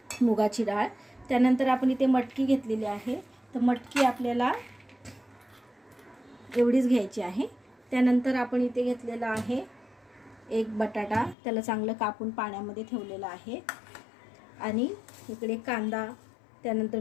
मुगाची डाळ. त्यानंतर आपण इथे मटकी घेतलेली आहे. तर मटकी आपल्याला एवढीच घ्यायची आहे. त्यानंतर आपण इथे घेतलेला आहे एक बटाटा, त्याला चांगलं कापून पाण्यामध्ये ठेवलेला आहे. आणि इकडे कांदा, त्यानंतर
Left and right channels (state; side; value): drops out; right; at 11.4 s